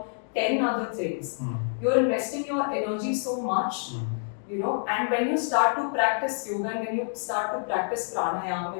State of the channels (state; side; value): silent; right; 60 dB below the other